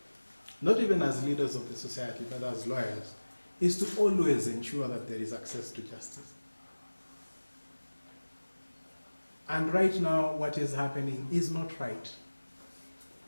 not even as leaders of the society, but as lawyers, is to always ensure that there is access to justice. And right now, what is happening is not right.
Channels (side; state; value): both; inverted; correlation -1.00